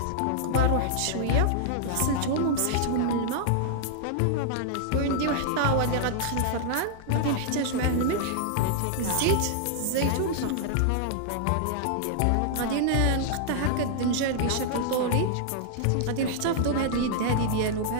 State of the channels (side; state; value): both; different; correlation -0.01